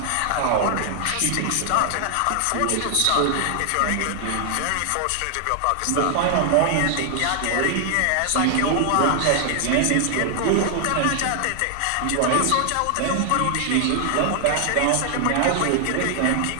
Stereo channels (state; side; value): different; both; correlation 0.00